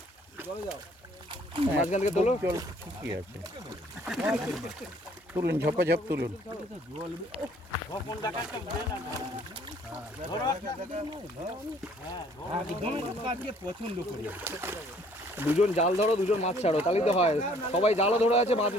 মাঝখান থেকে তোলো। জল কি আছে, তুলুন, ঝপাঝপ তুলুন। দুজন জাল ধরো, দুজন মাছ ছাড়ো, তাহলেই তো হয়। সবাই জালও ধরে আছে,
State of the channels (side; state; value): both; normal; correlation 0.59